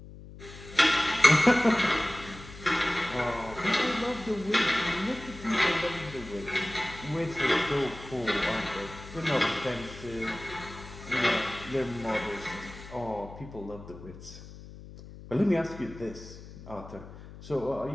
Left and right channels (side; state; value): left; noise; hum, 16 dB below the sound